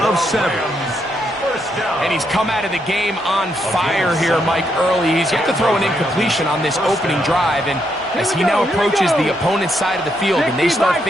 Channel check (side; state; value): right; noise; hum, 29 dB below the sound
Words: of 7. And he's come out of the game on fire here, Mike, early. He's yet to throw an incompletion on this opening drive, and as he now approaches the opponent's side of the field and they start